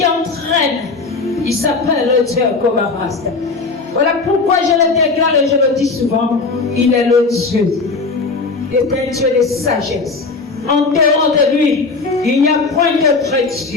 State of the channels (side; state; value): right; quieter; 4.0 dB